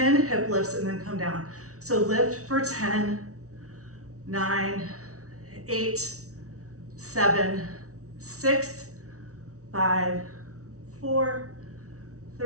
hip lifts and then come down. So lift for 10, 9, 8, 7, 6, 5, 4,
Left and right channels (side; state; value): left; late; 0.65 ms